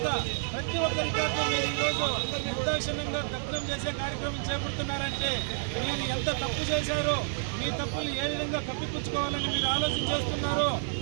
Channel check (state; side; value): silent; left; digital silence